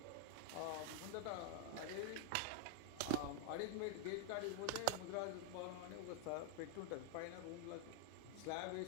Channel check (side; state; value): both; different; correlation -0.01